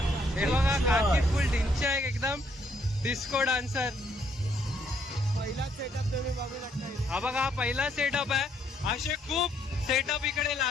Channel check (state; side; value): normal; both; correlation 0.70